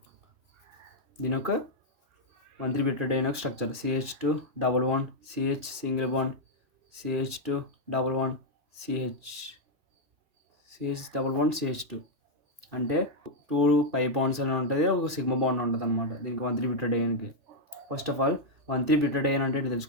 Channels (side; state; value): left; late; 2.6 ms